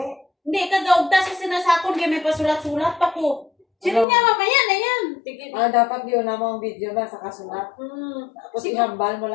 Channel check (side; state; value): right; drops out; at 4.0 s